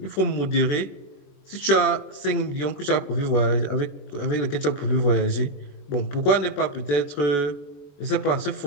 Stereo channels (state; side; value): late; right; 21 ms